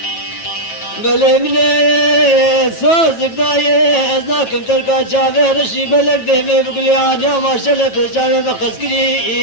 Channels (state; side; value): late; right; 9.1 ms